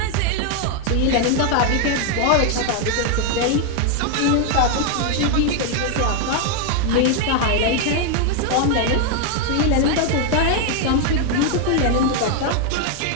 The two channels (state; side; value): different; both; correlation 0.01